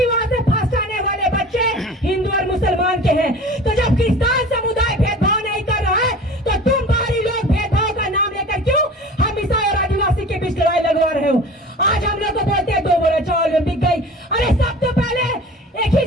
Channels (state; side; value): normal; both; correlation 0.40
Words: वहाँ से फर्स्ट आने वाले बच्चे हिंदू और मुसलमान के हैं। तो जब क्रिश्चियन समुदाय भेदभाव नहीं कर रहा है तो तुम बाहरी लोग भेदभाव का नाम लेकर क्यों हम ईसाई और आदिवासी के बीच लड़ाई लगवा रहे हो। आज हम लोग को बोलते हैं 2 बोरा चावल में बिक गई। अरे सब तो पहले एक ही